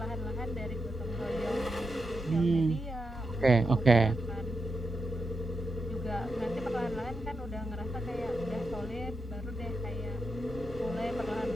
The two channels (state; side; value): normal; both; correlation 0.86